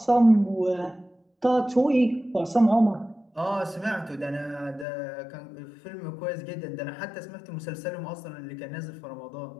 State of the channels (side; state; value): right; drops out; at 4.9 s